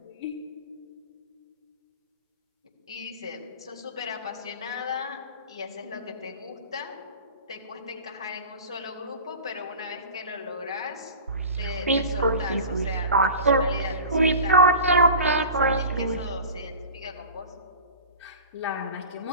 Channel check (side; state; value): both; inverted; correlation -0.36